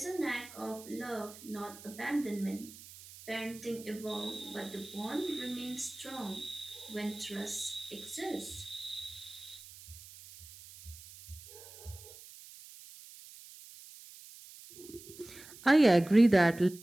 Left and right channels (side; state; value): right; noise; hiss, 17 dB below the sound